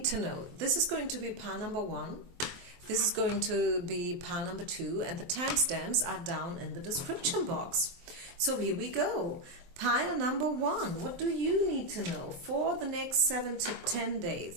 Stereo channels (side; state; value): left; late; 23 ms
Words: to know? This is going to be pile number 1. This is going to be pile number 2, and the timestamps are down in the description box. So here we go. Pile number 1. What do you need to know for the next 7 to 10